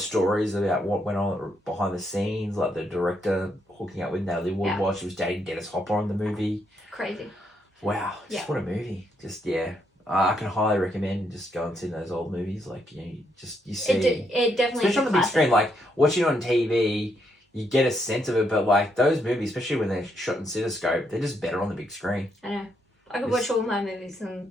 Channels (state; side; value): normal; both; correlation 0.76